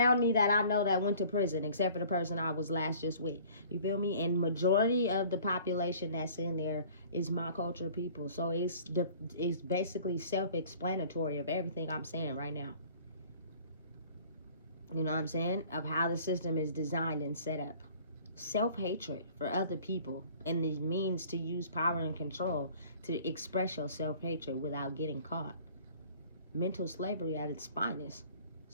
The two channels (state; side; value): inverted; both; correlation -0.50